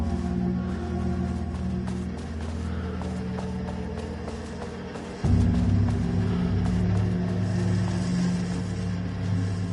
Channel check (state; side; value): identical; both; correlation 1.00